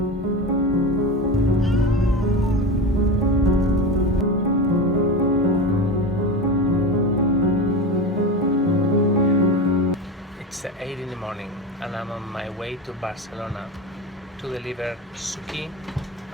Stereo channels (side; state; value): both; normal; correlation 0.23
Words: 8 in the morning and I'm on my way to Barcelona to deliver SUKI